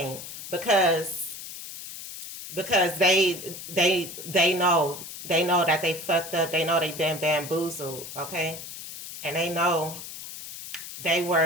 because they know that they fucked up. They know they've been bamboozled. Okay, and they know they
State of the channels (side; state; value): left; noise; hiss, 11 dB below the sound